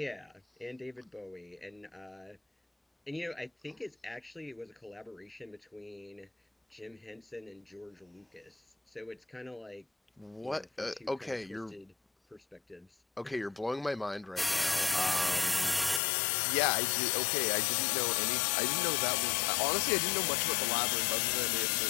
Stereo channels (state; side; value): drops out; right; at 16.0 s